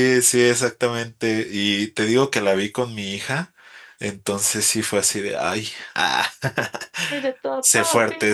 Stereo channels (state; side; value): identical; both; correlation 1.00